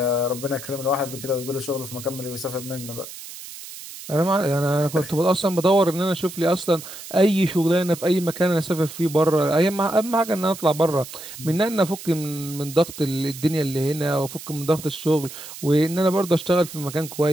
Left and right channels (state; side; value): noise; right; hiss, 13 dB below the sound